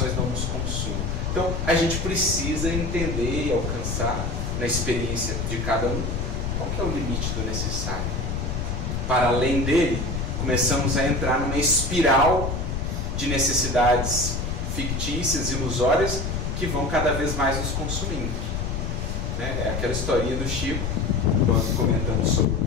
não nos consumam. Então a gente precisa entender e alcançar na experiência de cada um qual que é o limite do necessário. Para além dele, começamos a entrar numa espiral de necessidades fictícias, ilusórias, que vão cada vez mais nos consumindo. É aquela historinha do Chico, quando comentamos sobre o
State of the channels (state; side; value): noise; left; rumble, 2 dB below the sound